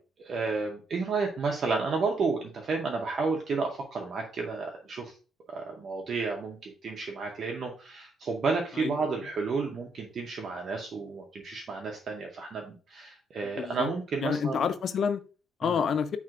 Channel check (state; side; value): normal; both; correlation 0.73